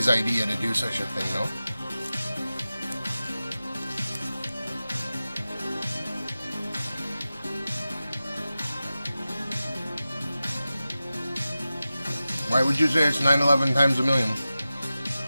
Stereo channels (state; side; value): inverted; both; correlation -0.95